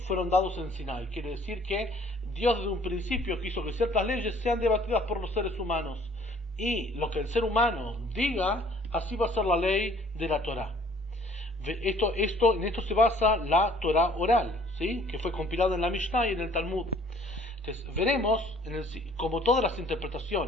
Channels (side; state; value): both; normal; correlation 0.56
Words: fueron dados en Sinai. Quiere decir que Dios desde un principio quiso que ciertas leyes sean debatidas por los seres humanos, y lo que el ser humano diga, así va a ser la ley de la Torá. En esto se basa la Torá oral, ¿sí?, que fue compilada en la Mishnah y en el Talmud. Entonces, veremos como todas las